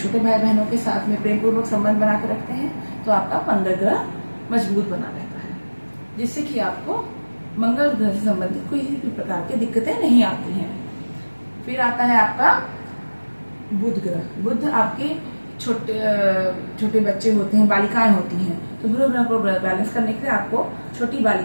भाई बहनों के साथ में प्रेम पूर्वक संबंध बना कर रखते हैं, तो आपका मंगल ग्रह मजबूत बना रहता है, जिससे कि आपको मंगल ग्रह से संबंधित कोई भी प्रकार की दिक्कतें नहीं आती हैं। फिर आता है आपका बुध ग्रह। बुध आपके छोटे बच्चे होते हैं, बालिकाएं होती हैं, तो बुध ग्रह को बैलेंस करने के लिए आपको छोटी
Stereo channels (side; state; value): both; inverted; correlation -1.00